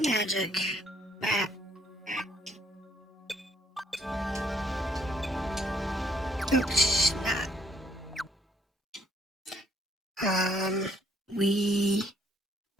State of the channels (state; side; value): normal; both; correlation 0.67